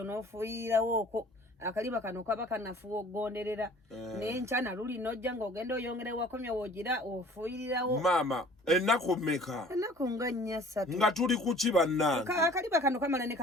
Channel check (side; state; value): both; normal; correlation 0.50